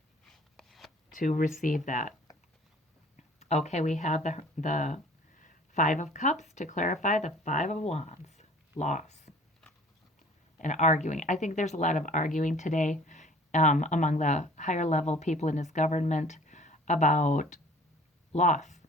to receive that. Okay, we have the Five of Cups to clarify the Five of Wands. Loss and arguing. I think there's a lot of arguing today among the higher level people in his government about loss.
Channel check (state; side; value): normal; both; correlation 0.50